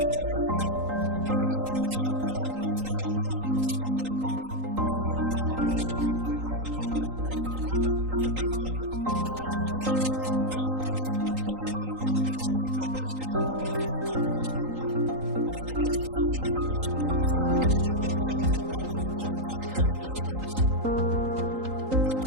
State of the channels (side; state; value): left; late; 3.8 ms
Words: and gentlemen, in the near future we will have the official launch of the Spotlight program, an EU-funded initiative to combat gender-based violence. I am pleased, very pleased indeed, that Zimbabwe has been selected as a beneficiary country for Spotlight, and in the next years we will support the fight against GBV in Zimbabwe with more than $20 million. The